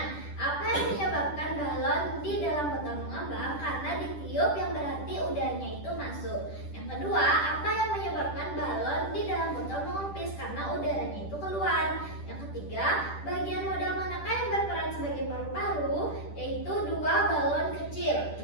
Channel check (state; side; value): late; right; 10 ms